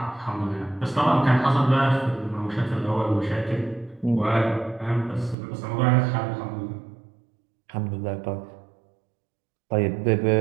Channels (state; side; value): drops out; left; at 5.4 s